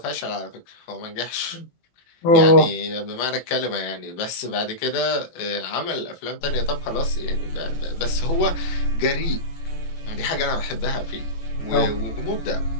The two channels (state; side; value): late; right; 18 ms